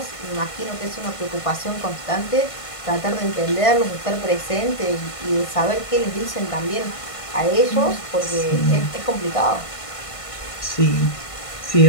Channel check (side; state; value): right; late; 1.5 ms